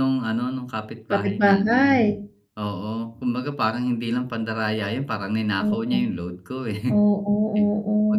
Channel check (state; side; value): identical; both; correlation 1.00